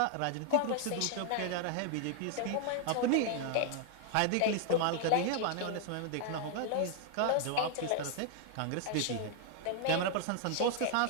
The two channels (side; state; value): both; different; correlation 0.00